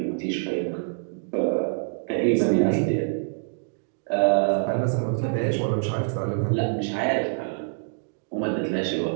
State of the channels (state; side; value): silent; left; digital silence